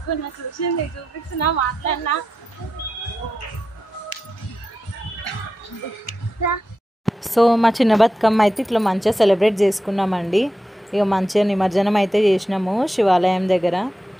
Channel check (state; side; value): normal; both; correlation 0.89